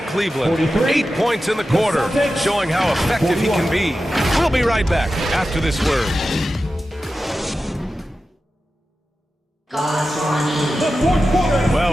Cleveland. 8 points in the quarter, showing how effective he can be. We'll be right back after this word.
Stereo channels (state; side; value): normal; both; correlation 0.93